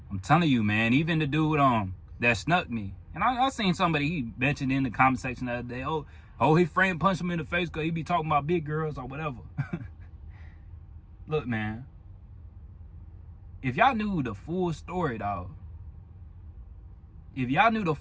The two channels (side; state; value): both; identical; correlation 1.00